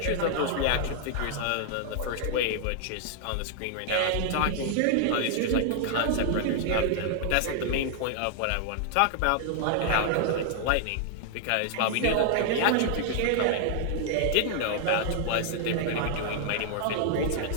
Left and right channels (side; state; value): both; different; correlation 0.00